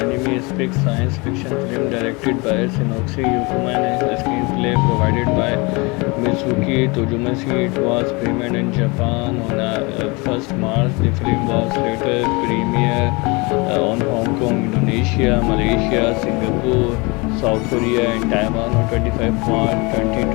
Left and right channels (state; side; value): quieter; right; 27.1 dB